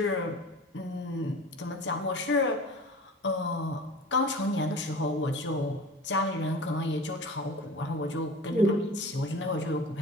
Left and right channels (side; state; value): both; normal; correlation 0.37